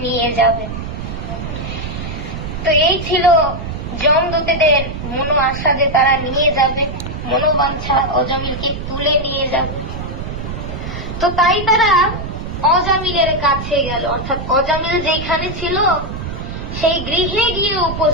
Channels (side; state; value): right; noise; rumble, 7 dB below the sound